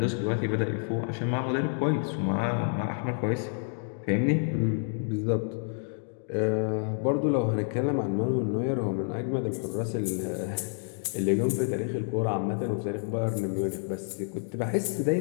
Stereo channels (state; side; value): silent; right; 59 dB below the other